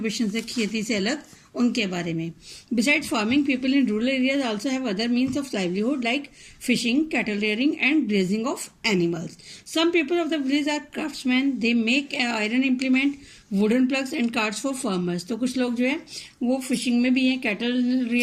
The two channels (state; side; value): identical; both; correlation 1.00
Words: से, खेती से अलग, उनके बारे में। Besides farming, people in rural areas also have other means of livelihood like fishing, cattle rearing and grazing of animals. Some people of the village are craftsman, they make iron implement, wooden ploughs and carts for farmers. तो कुछ लोग जो है वो fishing में भी हैं, cattle